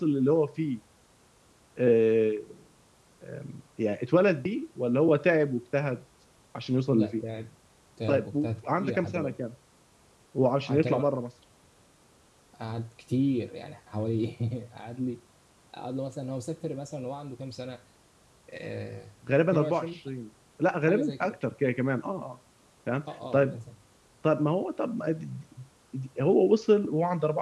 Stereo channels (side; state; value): both; identical; correlation 1.00